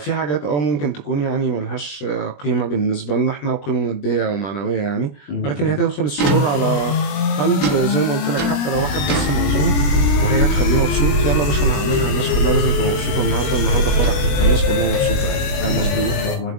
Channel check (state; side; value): late; right; 21 ms